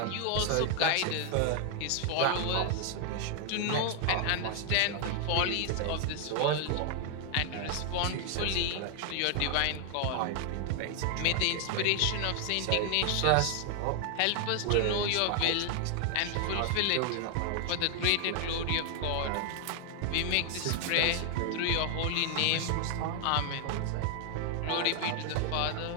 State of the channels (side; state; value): both; different; correlation 0.00